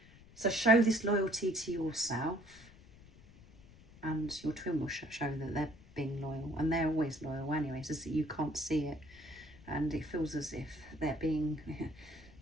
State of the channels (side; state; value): left; noise; rumble, 22 dB below the sound